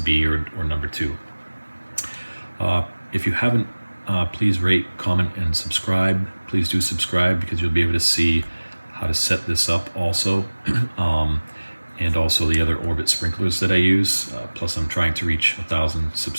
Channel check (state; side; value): inverted; both; correlation -1.00